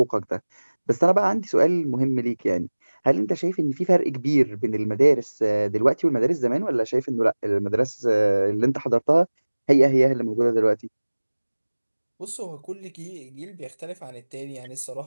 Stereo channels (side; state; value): both; inverted; correlation -1.00